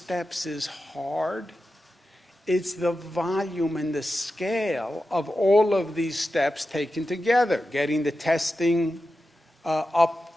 is hard. It's the volume and the scale of all of these steps taken together, getting the testing up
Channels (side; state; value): both; normal; correlation 0.91